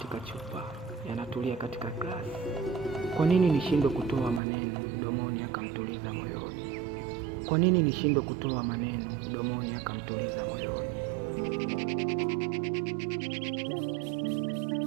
chupa, yanatulia katika glasi, kwa nini nishindwe kutoa maneno mdomoni akamtuliza moyoni? Kwa nini nishindwe kutoa maneno mdomoni akamtuliza moyoni?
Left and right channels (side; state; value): left; drops out; at 4.4 s